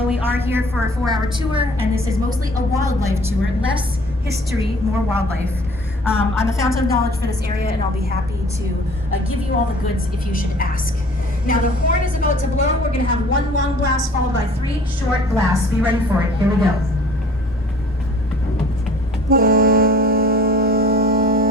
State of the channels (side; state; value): both; normal; correlation 0.50